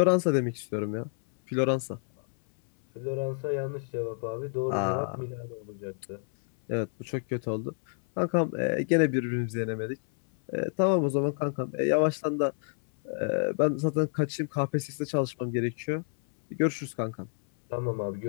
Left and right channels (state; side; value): silent; right; 59 dB below the other